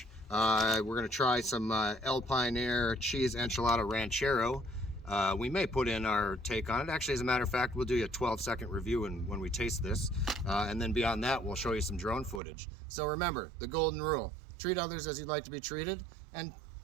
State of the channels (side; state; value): left; drops out; at 12.4 s